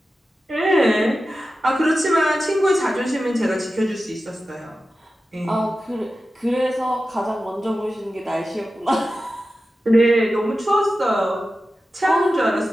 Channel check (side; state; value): both; normal; correlation 0.93